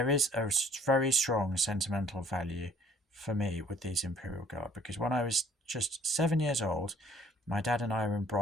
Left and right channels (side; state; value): both; normal; correlation 0.57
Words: is a very strong sentimental value for me with these Imperial Guard, because when I was just 7 years old, my dad and I were in